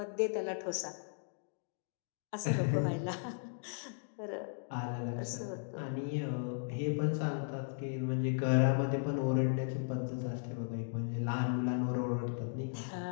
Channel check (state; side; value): silent; right; digital silence